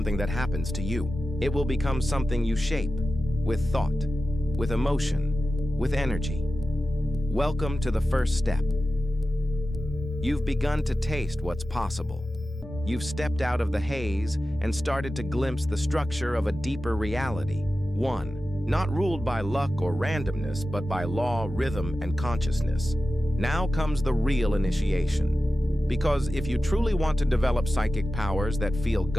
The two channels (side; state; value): both; normal; correlation 0.94